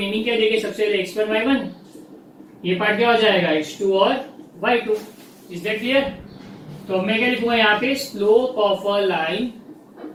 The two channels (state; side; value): identical; both; correlation 1.00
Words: क्या देंगे, सबसे पहले x1 y1, ये पार्ट क्या हो जाएगा x2 और y2। Is that clear? तो मैं क्या लिखूंगा यहाँ पे, slope of a line